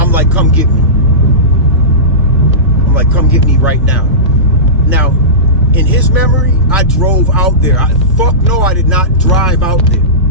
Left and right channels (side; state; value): both; normal; correlation -0.19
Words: like, come get me. I'm like, come get me right now. Now, in his memory, I drove out there. Fuck no, I did not drive out there.